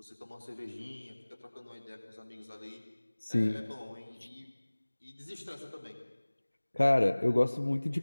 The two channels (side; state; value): both; inverted; correlation -1.00